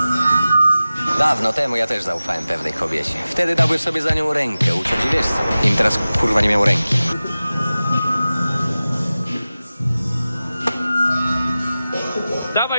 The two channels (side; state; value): both; inverted; correlation -0.96